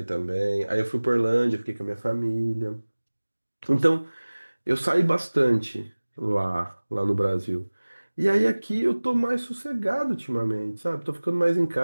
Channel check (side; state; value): both; inverted; correlation -1.00